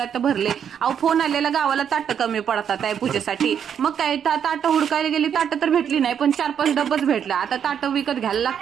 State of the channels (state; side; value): quieter; left; 8.3 dB